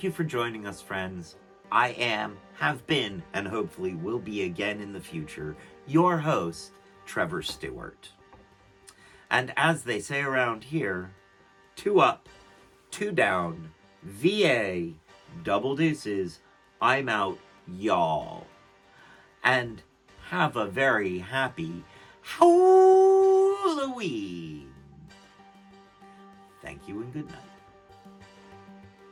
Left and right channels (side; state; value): both; identical; correlation 1.00